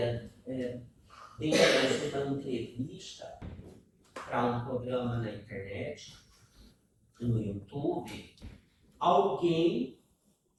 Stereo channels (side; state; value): both; identical; correlation 1.00